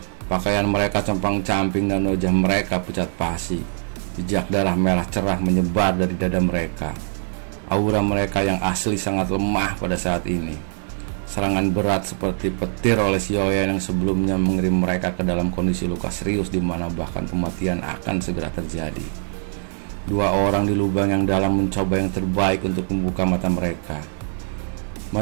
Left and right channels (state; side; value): silent; left; 64 dB below the other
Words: Pakaian mereka compang-camping dan wajah mereka pucat pasi. Jejak darah merah cerah menyebar dari dada mereka. Aura mereka yang asli sangat lemah pada saat ini. Serangan berat seperti petir oleh Xiaoyan yang sebelumnya mengirim mereka ke dalam kondisi luka serius di mana bahkan kematian akan segera terjadi. Dua orang di lubang yang dalam mencoba yang terbaik untuk membuka mata mereka.